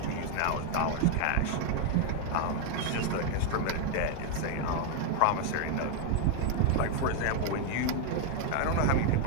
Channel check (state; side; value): different; both; correlation 0.00